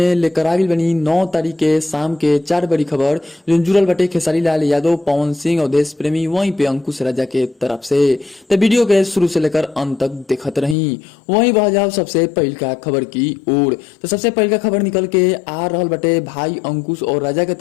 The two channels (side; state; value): right; drops out; at 10.8 s